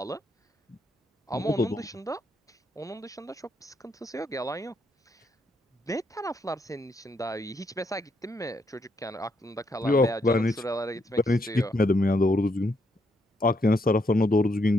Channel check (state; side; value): normal; both; correlation 0.76